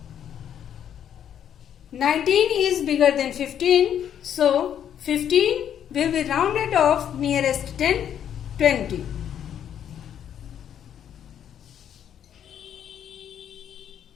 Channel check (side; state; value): right; quieter; 9.5 dB